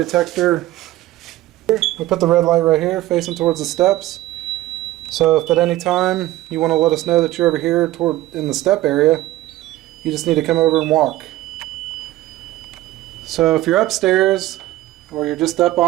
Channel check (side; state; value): left; quieter; 16.0 dB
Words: We put the red light right here facing towards the steps. So if at any time you want to let us know that you're over here in the step area, you just need to come over and walk. So if you're upstairs or you're just up